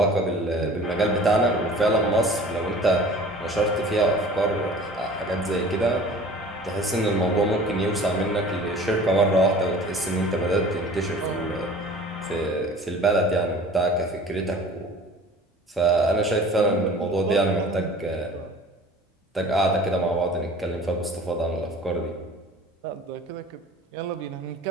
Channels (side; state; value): both; normal; correlation 0.45